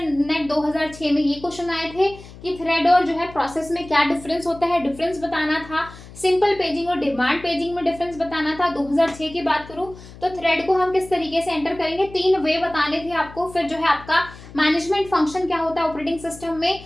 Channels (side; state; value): left; noise; hum, 18 dB below the sound